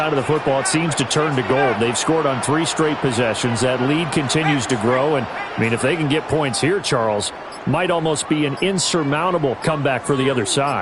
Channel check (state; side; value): identical; both; correlation 1.00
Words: of the football, it seems to turn to gold. They've scored on 3 straight possessions. That lead continues to grow. And, I mean, if they can get points here, Charles, might almost be an insurmountable comeback for the other